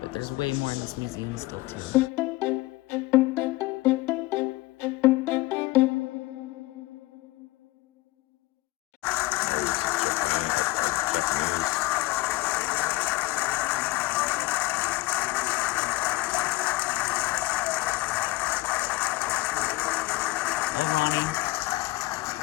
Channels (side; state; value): right; quieter; 19.6 dB